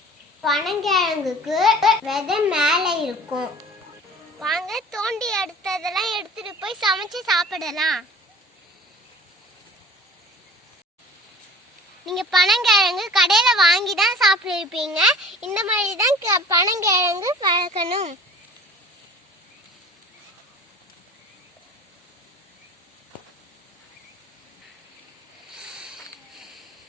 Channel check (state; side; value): normal; both; correlation 0.44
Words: பனங்கிழங்குக்கு விதை மேல இருக்கும். வாங்க தோண்டி எடுத்ததெல்லாம் எடுத்துட்டு போய் சமைச்சு சாப்பிடலாம். நீங்க பனங்கிழங்கு கடையில வாங்கி தான் சாப்பிட்டுருப்பீங்க. இந்த மாதிரி தான் பனங்கிழங்கு வளர்க்கணும்.